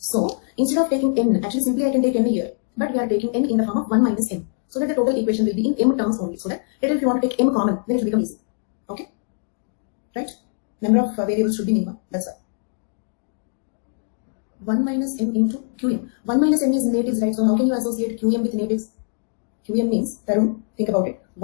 instead of taking n, actually simply I can take n here, but we are taking n in the form of 1 minus m, so that the total equation will be in m terms only. So that later if you want to take m common, then it will become easy. Okay, right? Number of variables should be minimum. That's why 1 minus m into qm. 1 minus m is natives, right? So how can you associate qm with natives? Qm means, Tarun, think about it.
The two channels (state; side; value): silent; right; digital silence